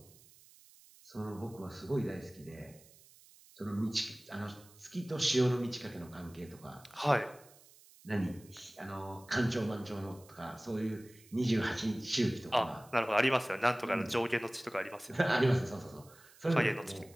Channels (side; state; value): right; noise; hiss, 25 dB below the sound